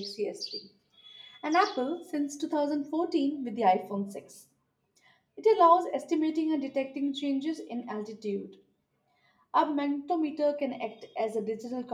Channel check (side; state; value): both; identical; correlation 1.00